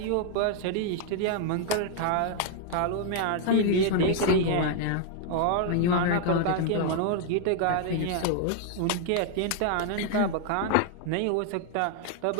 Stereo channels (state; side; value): different; both; correlation 0.00